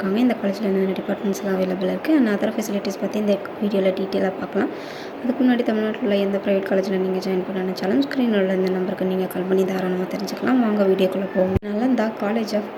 இந்த காலேஜில் என்னென்ன டிபார்ட்மெண்ட்ஸ்லாம் அவைலபிள் இருக்குது அண்ட் அதர் ஃபெசிலிட்டிஸ் பற்றி இந்த வீடியோவில் டீட்டெயிலாக பார்க்கலாம். அதுக்கு முன்னாடி தமிழ்நாட்டில் உள்ள எந்த ப்ரைவேட் காலேஜில் நீங்கள் ஜாயின் பண்ண நினச்சாலும் ஸ்க்ரீனில் உள்ள இந்த நம்பருக்கு நீங்கள் கால் பண்ணி தாராளமாக தெரிஞ்சுக்கலாம். வாங்க வீடியோக்குள்ளே போவோம். Nalanda college of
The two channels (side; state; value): both; identical; correlation 1.00